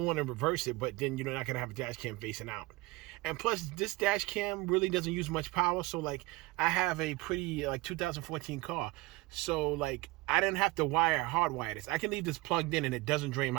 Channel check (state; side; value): quieter; left; 21.4 dB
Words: one and reverse it, but then you're not going to have a dash cam facing out. And plus, this dash cam really doesn't use much power. So like, I have a pretty 2014 car. So like, I didn't have to hardwire this. I can leave this plugged in and it doesn't drain